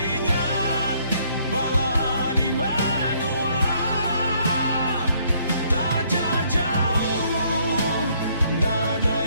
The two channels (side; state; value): both; inverted; correlation -0.66